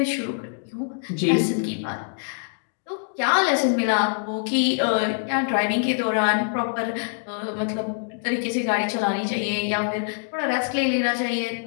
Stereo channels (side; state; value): right; silent; 62 dB below the other